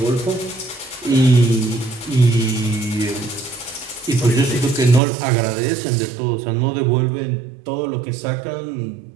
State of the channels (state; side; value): drops out; left; at 5.0 s